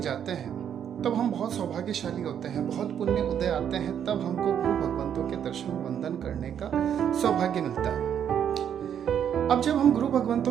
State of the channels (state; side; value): quieter; left; 9.0 dB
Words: हैं, तब हम बहुत सौभाग्यशाली होते हैं, बहुत पुण्य उदय आते हैं, तब हमको गुरु भगवंतों के दर्शन वंदन करने का सौभाग्य मिलता है। अब जब हम गुरु